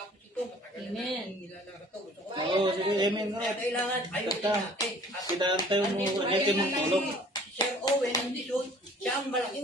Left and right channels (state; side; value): normal; both; correlation 0.52